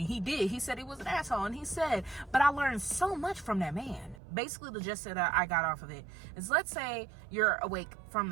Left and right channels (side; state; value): left; drops out; at 4.2 s